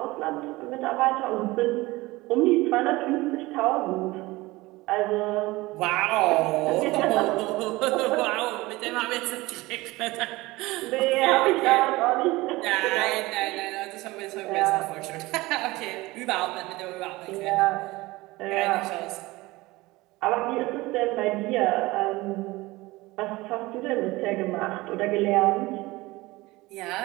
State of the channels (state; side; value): quieter; left; 20.5 dB